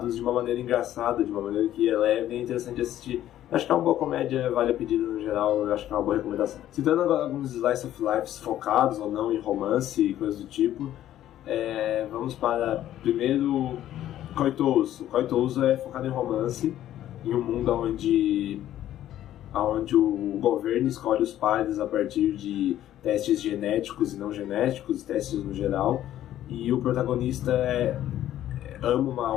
de uma maneira engraçada, de uma maneira que é leve e é interessante assistir. Acho que é uma boa comédia, vale a pedida no geral, eu acho que é uma boa recomendação. Citando agora alguns slice of life focados ou não em romance e coisas do tipo, vamos para, primeiro, Koitouso. Koitouso é focado em romance, em um mundo onde o governo escolhe os pares a partir de testes genéticos e não genéticos, testes no geral, e o protagonista ama uma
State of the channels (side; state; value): right; quieter; 12.4 dB